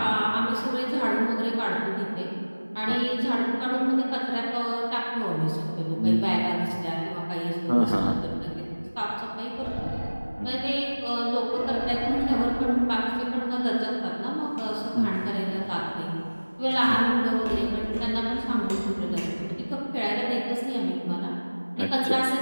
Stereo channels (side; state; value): both; inverted; correlation -1.00